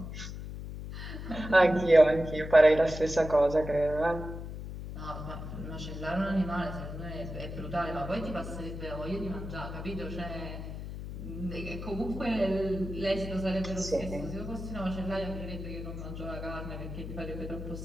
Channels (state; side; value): noise; left; hum, 8 dB below the sound